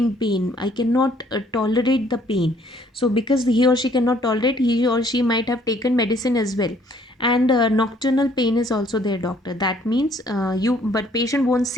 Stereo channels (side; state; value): both; normal; correlation 0.62